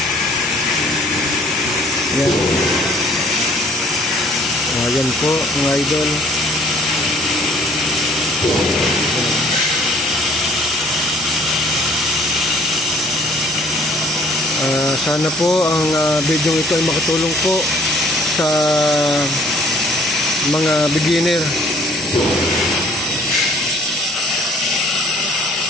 Yan. Yan po mga idol. Sana po ang video ito ay makatulong po sa mga beginner.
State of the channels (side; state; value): both; normal; correlation 0.57